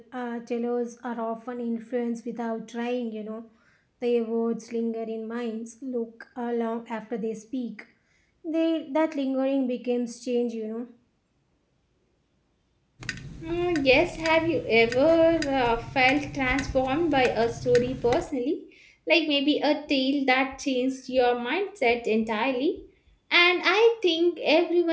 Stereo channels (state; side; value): identical; both; correlation 1.00